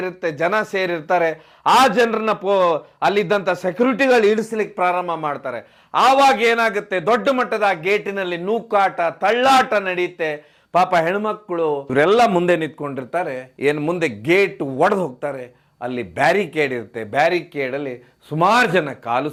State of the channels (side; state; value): both; identical; correlation 1.00